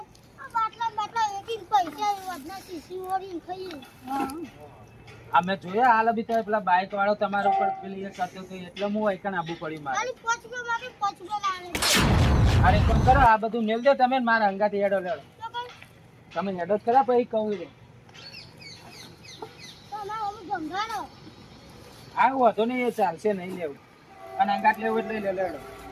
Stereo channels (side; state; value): both; identical; correlation 1.00